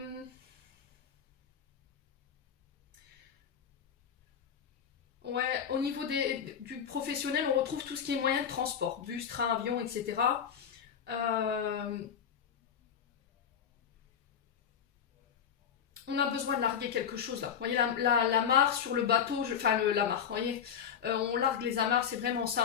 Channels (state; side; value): quieter; right; 8.0 dB